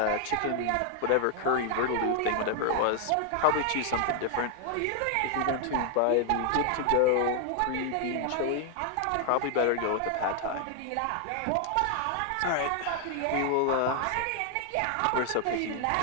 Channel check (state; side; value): different; both; correlation 0.00